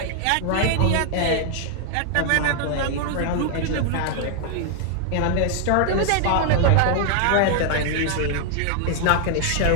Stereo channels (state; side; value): different; both; correlation 0.00